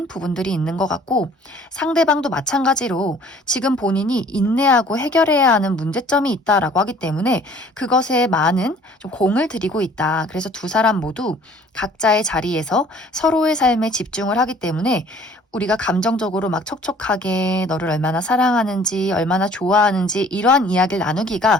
부분들이 있는 것 같고 상대방도 마찬가지로 지금 본인이 인내하고 해결해야 하는 문제점이 있다라고 하기 때문에 그것에 많은 좀 공을 들이고 있다. 그래서 두 사람 모두 각자의 자리에서 서로의 삶에 집중을 하기 때문에 우리가 감정적으로 막 촉촉하게 너를 얼마나 사랑하는지 얼마나 좋아하는지 이러한 이야기를 나누기가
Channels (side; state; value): both; normal; correlation 0.54